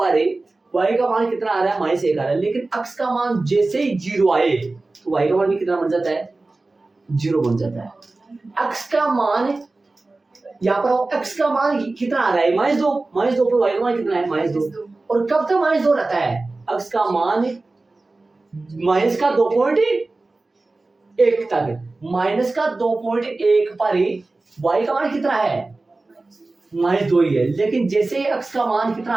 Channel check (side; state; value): left; quieter; 3.3 dB